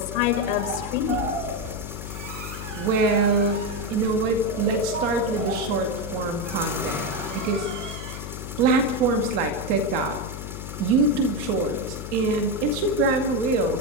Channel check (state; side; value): noise; left; hum, 9 dB below the sound